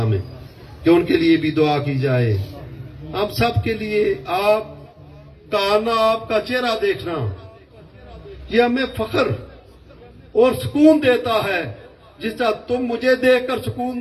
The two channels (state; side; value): identical; both; correlation 1.00